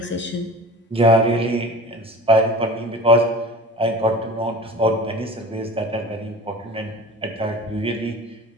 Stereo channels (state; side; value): normal; both; correlation 0.39